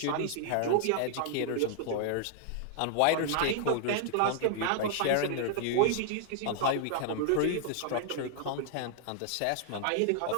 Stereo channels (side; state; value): both; different; correlation -0.01